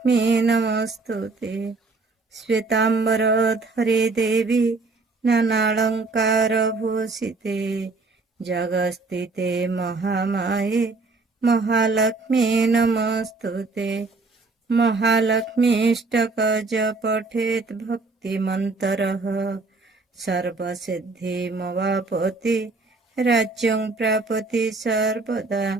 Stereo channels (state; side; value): quieter; left; 3.7 dB